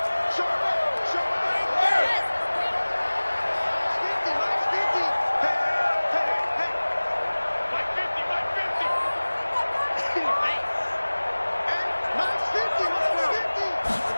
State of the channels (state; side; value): inverted; both; correlation -1.00